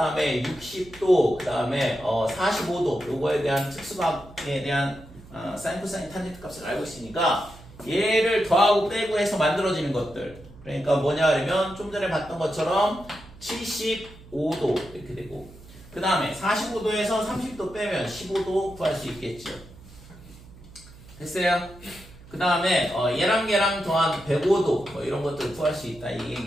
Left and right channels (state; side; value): noise; right; hum, 20 dB below the sound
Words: 60도 그 다음에 45도 요거에 대한 특수각에 대한 사인 코사인 탄젠트 값을 알고 있으니까 얘를 더하고 빼고 해서 만들어지는 것들. 그러니까 뭐냐 하면 좀 전에 봤던 것처럼 75도 이렇게 되고 그 다음에 45도에서 30도 빼면 15도 구할 수 있겠죠. 됐어요? 그 다음에 얘랑 더한 105도 뭐 이런 것들을 구할 수 있다 이